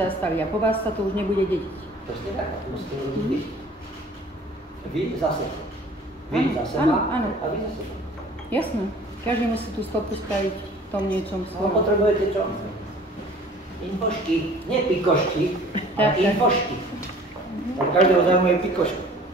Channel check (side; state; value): both; normal; correlation 0.49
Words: a po vás sa to už nebude dediť. Presne tak, to musíte robiť vy. Vy za seba. Vy za seba áno. A vy za seba. Jasné. Každý musí tú stopu spraviť v tom niečom svojom. No, potrebujete čo? Infošky, nie pikošky, ale infošky. Každého zaujímajú pikošky.